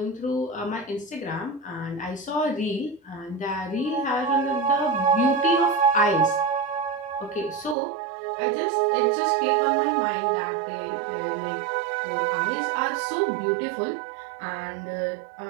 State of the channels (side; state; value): left; drops out; at 7.8 s